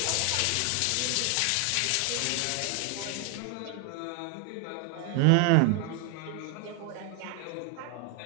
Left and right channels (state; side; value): different; both; correlation 0.01